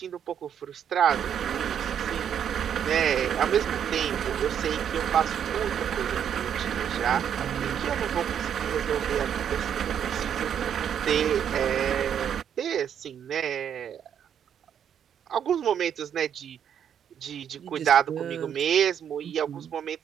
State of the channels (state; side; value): quieter; left; 8.8 dB